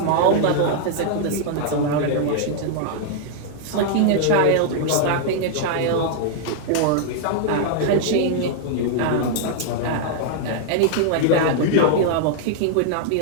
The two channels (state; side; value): different; both; correlation -0.01